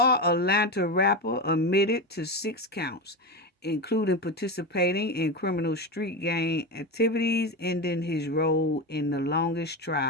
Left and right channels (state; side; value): normal; both; correlation 0.18